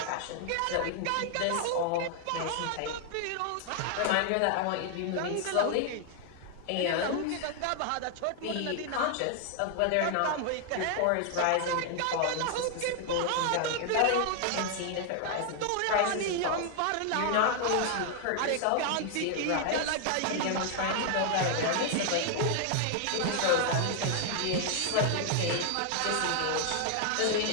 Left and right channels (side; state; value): both; different; correlation 0.00